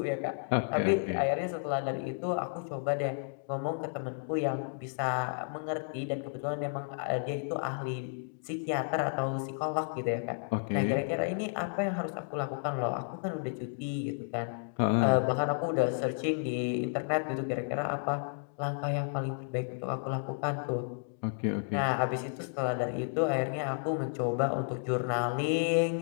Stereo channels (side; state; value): right; silent; digital silence